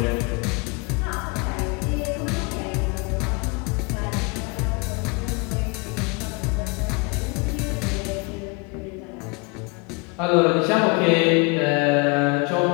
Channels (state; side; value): quieter; right; 29.8 dB